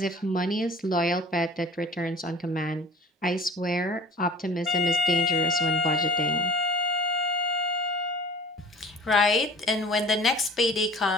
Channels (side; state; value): both; normal; correlation 0.45